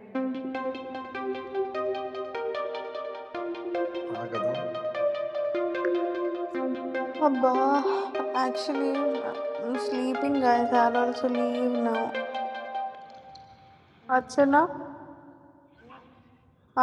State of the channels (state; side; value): identical; both; correlation 1.00